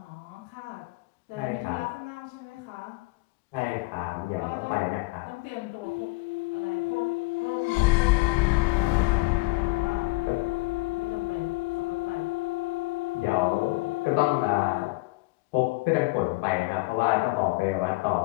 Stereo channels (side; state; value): right; quieter; 23.6 dB